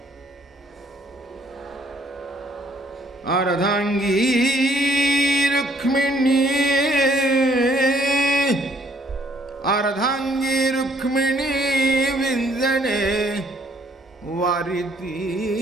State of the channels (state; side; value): normal; both; correlation 0.64